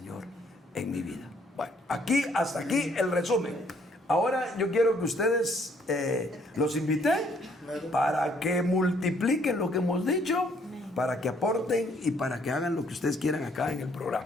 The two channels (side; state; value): both; normal; correlation 0.66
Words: en mi vida. Bueno, hasta aquí el resumen. Ahora yo quiero que ustedes los invité para que multipliquen lo que hemos dicho, para que aporten y para que hagan lo que ustedes quieran acá en el programa.